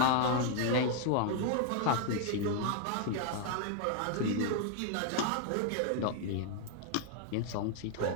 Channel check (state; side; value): different; both; correlation 0.00